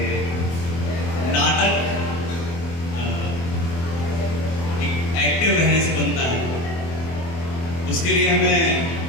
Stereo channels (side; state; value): right; late; 24 ms